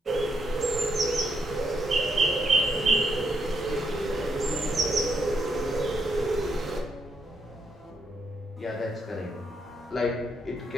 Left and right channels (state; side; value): normal; both; correlation 0.78